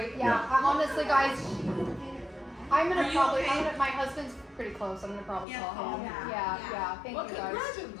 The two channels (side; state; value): right; drops out; at 5.5 s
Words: Yeah. Yeah. Honestly, guys, I'm Are gonna you probably. okay? My husband's pretty close. I'm gonna probably Yeah, call call him. him. Yeah. Thank Well, you guys.